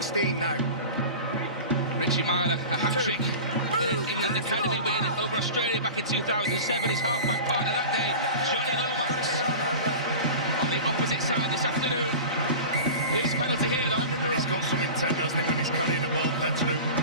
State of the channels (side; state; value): both; inverted; correlation -0.33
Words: now. Richie Myler, a hat-trick in his England Academy win over Australia back in 2007. His half-back partner that day, Johnny Lomax. On the opposite side this afternoon. His penalty here, though. He's got some intent, hasn't he, when he's carrying the ball, Petteru.